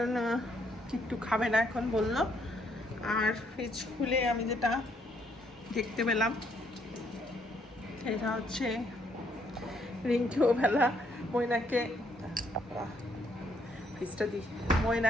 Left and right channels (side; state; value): both; normal; correlation 0.71